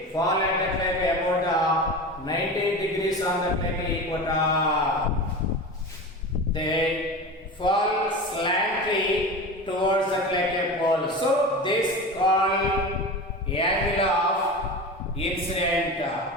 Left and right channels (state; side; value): normal; both; correlation 0.29